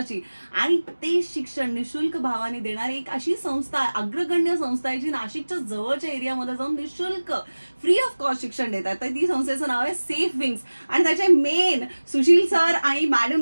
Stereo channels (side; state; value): both; inverted; correlation -1.00